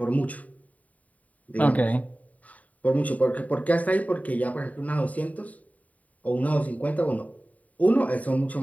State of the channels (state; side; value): late; right; 0.071 ms